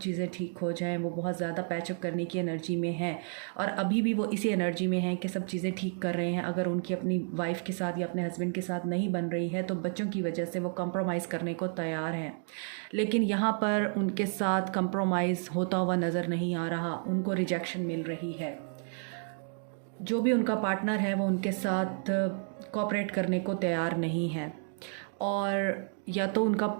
ठीक हो जाएं, वो बहुत ज़्यादा पैचअप करने की एनर्जी में है, और अभी भी वो इसी एनर्जी में हैं कि सब चीज़ें ठीक कर रहे हैं। अगर उनकी अपनी वाइफ के साथ या अपने हस्बैंड के साथ नहीं बन रही है तो बच्चों की वजह से वो कंप्रोमाइज़ करने को तैयार हैं, लेकिन यहाँ पर उनके साथ कंप्रोमाइज़ होता हुआ नज़र नहीं आ रहा, उनको रिजेक्शन मिल रही है। जो भी उनका पार्टनर है वो उनके साथ कोऑपरेट करने को तैयार नहीं है, और या तो उनका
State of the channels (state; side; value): silent; left; 57 dB below the other